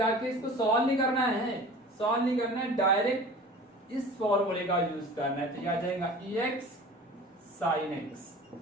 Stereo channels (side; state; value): both; normal; correlation 0.40